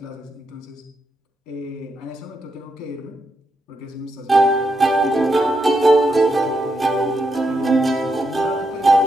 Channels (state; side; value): normal; both; correlation 0.82